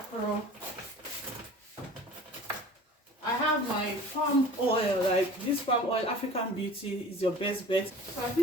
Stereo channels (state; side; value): normal; both; correlation 0.43